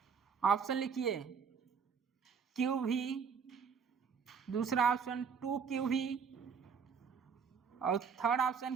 option लिखिए QV, दूसरा option 2QV और third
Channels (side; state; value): left; quieter; 6.3 dB